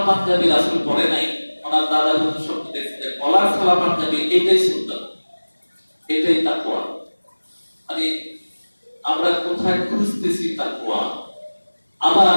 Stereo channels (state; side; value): inverted; both; correlation -1.00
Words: পাঞ্জাবি রাসূল পরে নাই, ওনার দাদা হুজুর স্বপ্নে দেখছে যে কলার গলা পাঞ্জাবি, এটাই সুন্নাত, এটাই তাকওয়া। মানে আমরা কোথায় খুঁজতেছি তাকওয়া? আবার